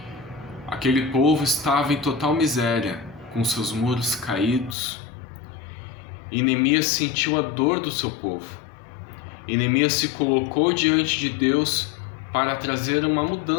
Aquele povo estava em total miséria, com seus muros caídos, e Neemias sentiu a dor do seu povo. E Neemias se colocou diante de Deus para trazer uma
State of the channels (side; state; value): right; drops out; at 4.8 s